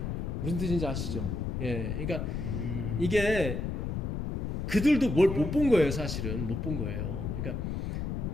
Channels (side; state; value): left; noise; rumble, 2 dB below the sound